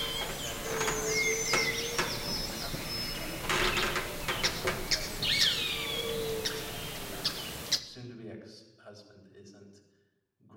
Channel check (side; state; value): both; identical; correlation 1.00